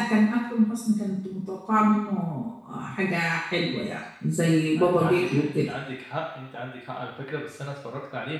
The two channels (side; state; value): both; identical; correlation 1.00